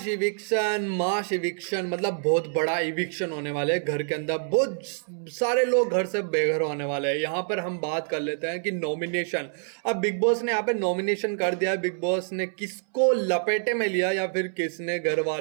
eviction मतलब बहुत बड़ा इविक्शन होने वाला है घर के अंदर। बहुत सारे लोग घर से बेघर होने वाले हैं। यहाँ पर हम बात कर लेते हैं कि नॉमिनेशन। अब बिग बॉस ने यहाँ पे नॉमिनेशन कर दिया। बिग बॉस ने किसको लपेटे में लिया या फिर किसने घर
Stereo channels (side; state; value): left; silent; 61 dB below the other